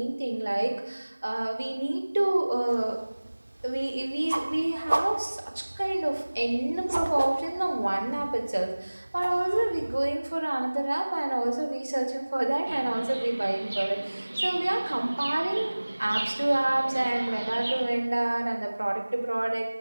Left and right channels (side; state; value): both; inverted; correlation -1.00